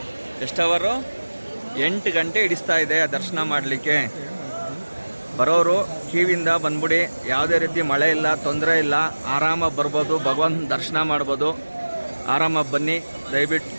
ಎಷ್ಟು ಅವರು? 8 ಗಂಟೆ ಹಿಡಿಸ್ತಾ ಇದೆ ದರ್ಶನ ಮಾಡಲಿಕ್ಕೆ. ಬರೋರು ಕ್ಯೂವಿಂದ ಬಂದ್ಬಿಡಿ. ಯಾವುದೇ ರೀತಿ ಮಳೆ ಇಲ್ಲ, ತೊಂದರೆ ಇಲ್ಲ, ಆರಾಮಾಗಿ ಬರ್ಬೋದು, ಭಗವಂತನ ದರ್ಶನ ಮಾಡ್ಬೋದು. ಆರಾಮಾಗಿ ಬನ್ನಿ ದಯವಿಟ್ಟು.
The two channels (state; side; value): inverted; both; correlation -1.00